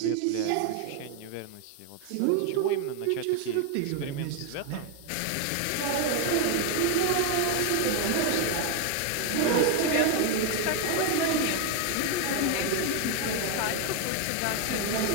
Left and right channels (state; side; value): different; both; correlation 0.01